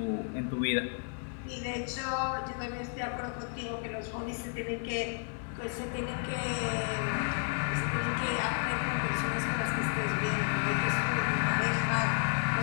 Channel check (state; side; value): silent; right; 56 dB below the other